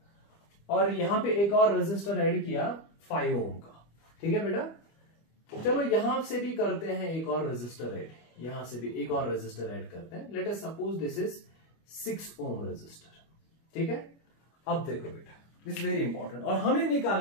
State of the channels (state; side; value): late; right; 25 ms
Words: और यहां पे एक और रेजिस्टर ऐड किया 5 ओम का। ठीक है बेटा, चलो यहां से भी करते हैं एक और रेजिस्टर ऐड, यहां से भी एक और रेजिस्टर ऐड करते हैं। Let us suppose this is 6 ohm resistor. ठीक है, अब देखो बेटा, दिस वेरी इंपॉर्टेंट, और हमें